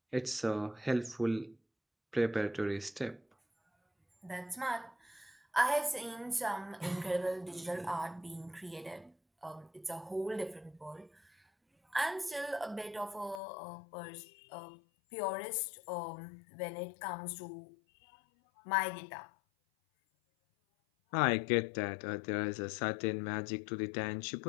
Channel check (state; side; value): drops out; right; at 13.4 s